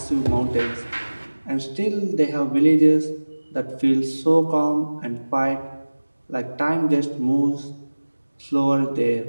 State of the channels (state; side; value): inverted; both; correlation -1.00